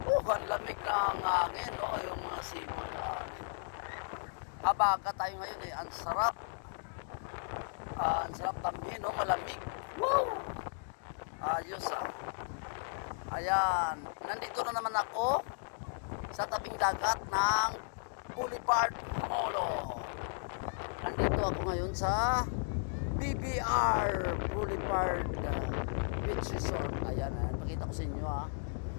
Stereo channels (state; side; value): silent; right; digital silence